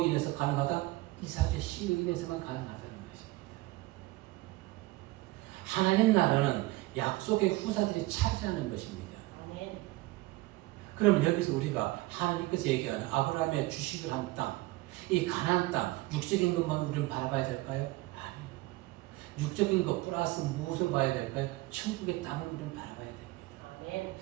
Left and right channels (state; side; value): quieter; left; 20.1 dB